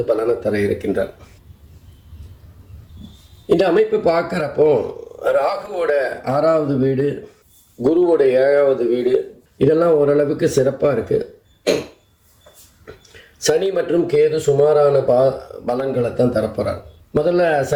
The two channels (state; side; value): identical; both; correlation 1.00